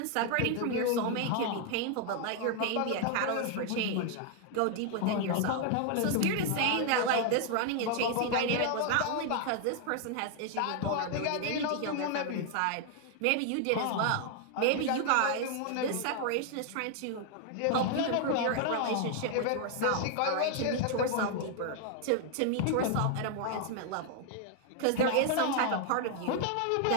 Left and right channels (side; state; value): both; different; correlation 0.00